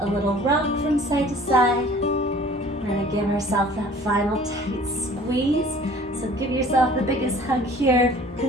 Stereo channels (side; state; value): both; normal; correlation 0.49